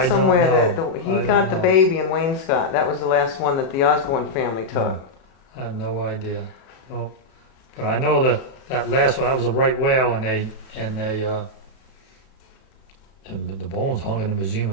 somewhere know. that he I don't got the know. baby in Wainscott. That was the last one that the Osborne family took. I have no idea. No. But I know that last one, that was a right whale, and the bones hung in the Museum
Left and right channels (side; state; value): right; late; 37 ms